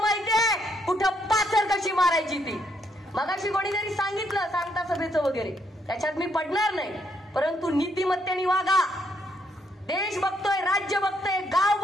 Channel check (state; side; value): normal; both; correlation 0.74